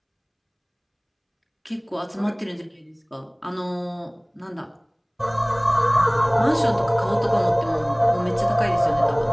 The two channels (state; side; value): identical; both; correlation 1.00